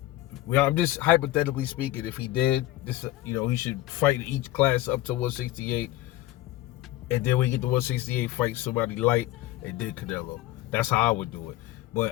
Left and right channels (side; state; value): right; quieter; 15.8 dB